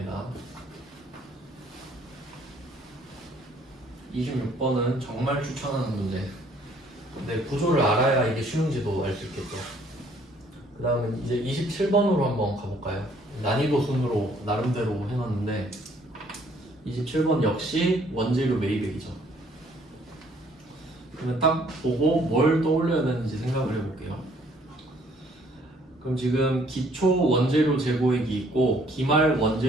26번은 정말 추천하는 문제. 근데 구조를 알아야 이게 쉬운지도 알 수 있겠죠. 그 다음에 이제 27번으로 한번 가볼까요? 난이도 순으로 나름대로 해놨는데 27번 역시 원재료 매입액이죠. 그러면 딱 보고 뭘 떠올려야 되는지 생각을 해볼게요. 그럼 지금 기초 원재료 재고액이 있고 기말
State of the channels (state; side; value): normal; both; correlation 0.62